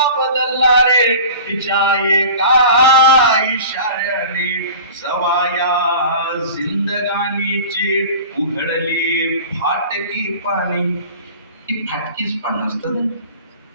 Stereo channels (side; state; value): both; inverted; correlation -0.39